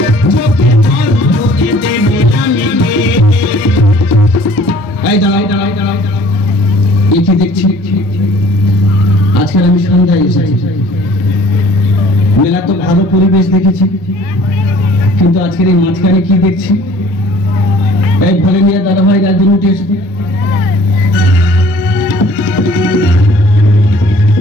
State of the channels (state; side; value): normal; both; correlation 0.53